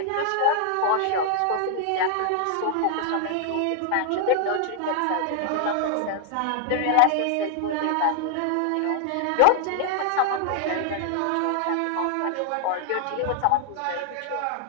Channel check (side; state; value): both; different; correlation 0.00